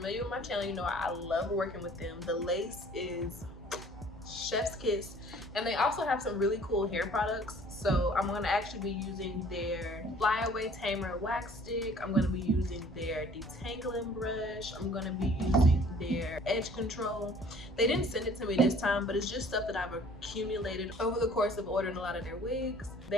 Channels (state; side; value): normal; both; correlation 0.53